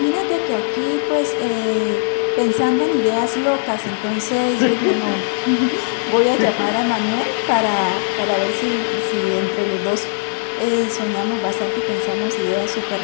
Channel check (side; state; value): right; silent; digital silence